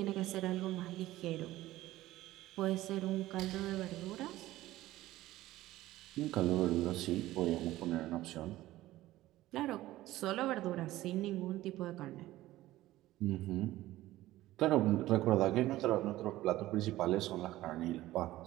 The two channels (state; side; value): quieter; left; 16.1 dB